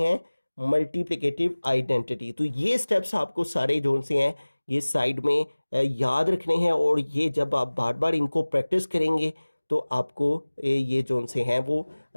मल्टीप्लिकेटिव आइडेंटिटी। तो ये स्टेप्स आपको सारे जो से हैं ये साइड में याद रखने हैं, और ये जब आप बार बार इनको प्रैक्टिस करेंगे तो आपको ये जो से हैं वो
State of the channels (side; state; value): both; inverted; correlation -1.00